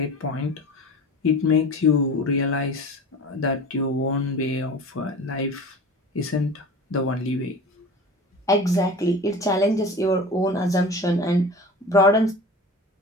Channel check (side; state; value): both; normal; correlation 0.36